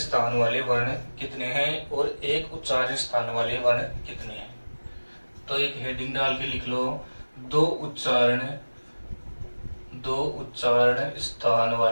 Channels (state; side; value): inverted; both; correlation -1.00